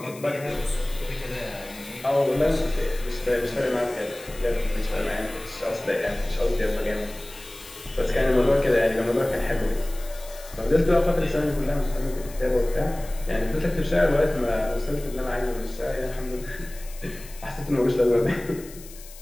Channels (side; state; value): left; noise; hiss, 18 dB below the sound